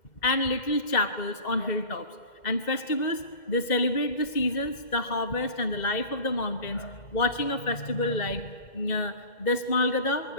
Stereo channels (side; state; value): right; late; 2.1 ms